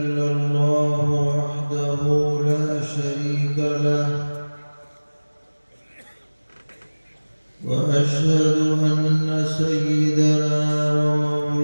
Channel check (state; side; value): inverted; both; correlation -1.00